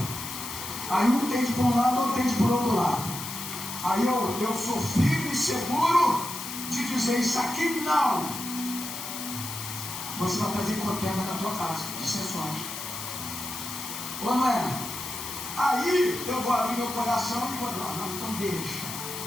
Aí um tende por um lado, outro tende por outro lado. Aí eu sou firme e seguro de dizer: isso aqui não. Você vai trazer contenda na tua casa, dissensões. Ou não é? Aí eu vou abrir meu coração e vou dizer: não, então deixa.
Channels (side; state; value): left; noise; hiss, 7 dB below the sound